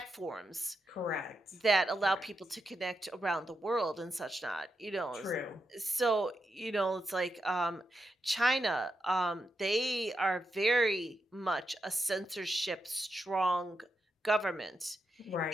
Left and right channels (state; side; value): normal; both; correlation 0.85